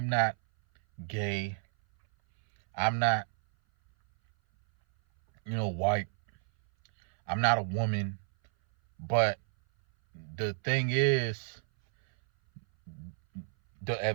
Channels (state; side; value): silent; left; 58 dB below the other